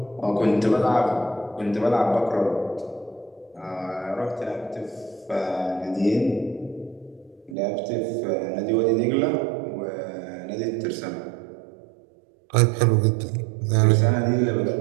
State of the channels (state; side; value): drops out; left; at 7.6 s